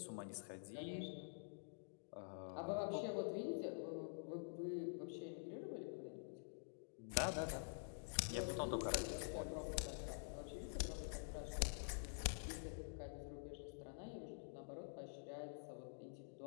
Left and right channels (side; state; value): right; silent; digital silence